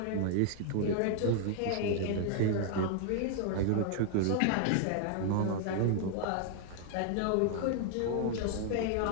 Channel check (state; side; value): different; both; correlation 0.00